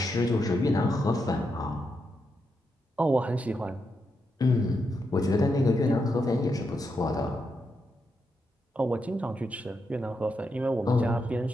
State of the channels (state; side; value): normal; both; correlation 0.83